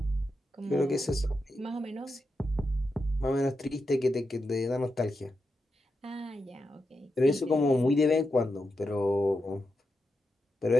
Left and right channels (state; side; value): normal; both; correlation 0.87